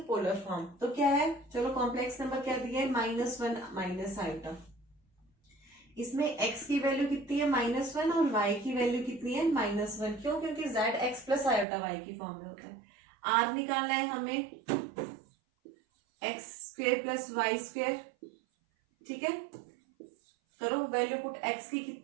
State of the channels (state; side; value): drops out; left; at 11.7 s